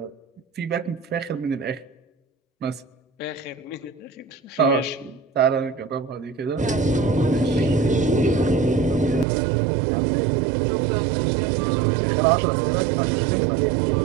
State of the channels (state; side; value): drops out; left; at 9.2 s